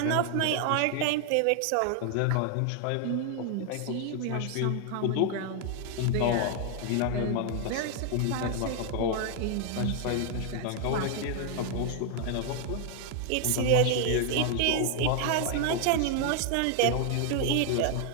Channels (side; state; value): both; different; correlation 0.00